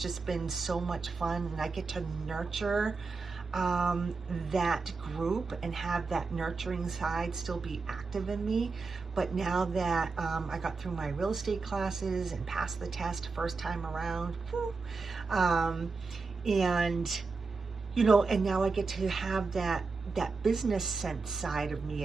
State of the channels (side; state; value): left; quieter; 4.3 dB